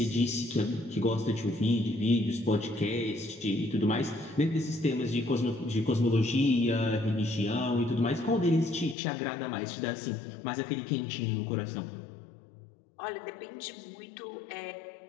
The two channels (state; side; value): drops out; right; at 9.0 s